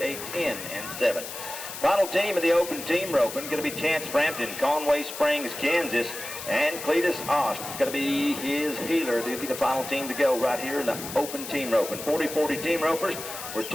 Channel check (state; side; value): noise; left; hiss, 9 dB below the sound